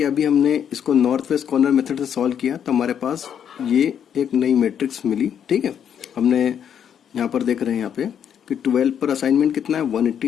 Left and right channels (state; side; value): quieter; right; 8.6 dB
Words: अभी हमने इसको नॉर्थ वेस्ट कॉर्नर मेथड से सॉल्व किया तो हमारे पास ये एक नई मैट्रिक्स मिली। ठीक है, हमने यहाँ पर देख रहे हैं यहाँ पे कि 12 पर असाइनमेंट कितना है